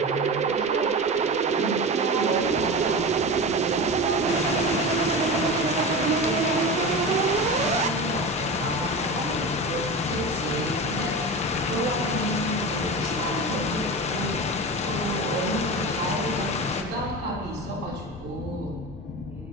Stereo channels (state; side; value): normal; both; correlation 0.27